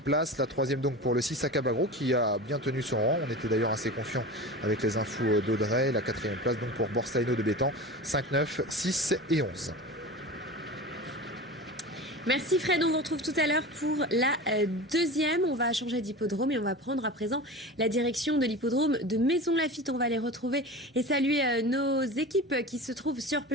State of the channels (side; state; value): both; normal; correlation 0.32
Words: place. La troisième donc pour le 6 Akabagro qui a bien tenu son rang. On était d'ailleurs assez confiant avec les infos d'Audrey. La quatrième place donc pour Borsalino de Bétan. 5, 9, 6 et 11. Merci Fred, on vous retrouve tout à l'heure pour la deuxième. On va changer d'hippodrome et on va prendre à présent la direction de l'hippodrome de Maisons-Laffitte. On va les retrouver et saluer nos équipes qui se trouvent sur